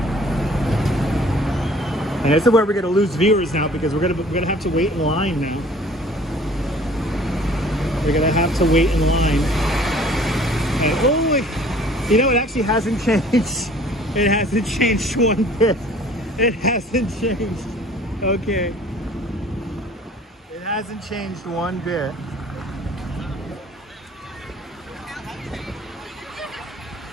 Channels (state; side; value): normal; both; correlation 0.52